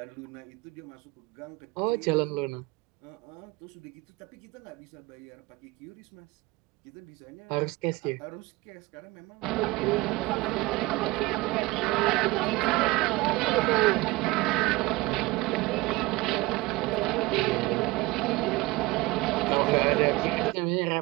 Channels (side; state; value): left; quieter; 20.6 dB